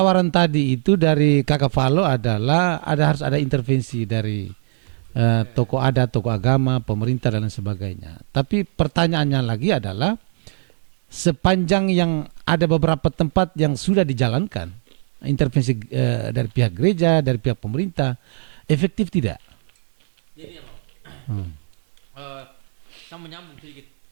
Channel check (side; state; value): left; silent; digital silence